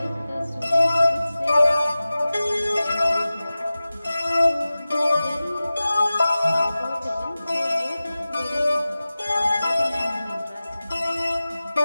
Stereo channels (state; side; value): inverted; both; correlation -0.96